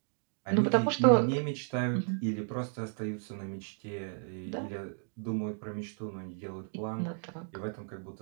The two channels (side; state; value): left; silent; digital silence